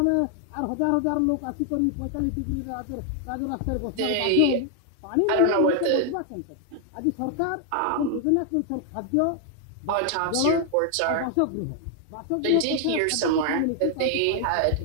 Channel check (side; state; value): both; different; correlation 0.00